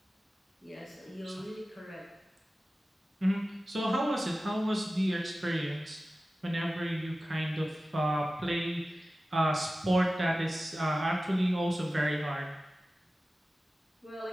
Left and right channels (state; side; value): normal; both; correlation 0.96